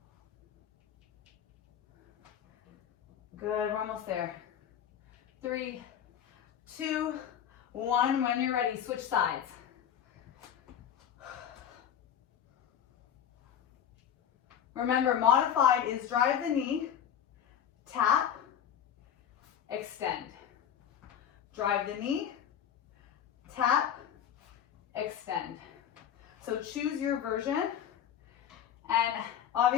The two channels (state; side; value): quieter; right; 9.3 dB